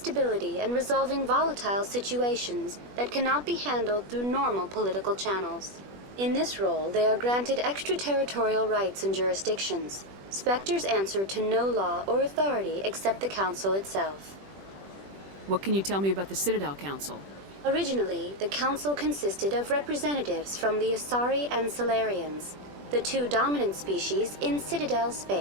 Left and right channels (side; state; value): left; late; 21 ms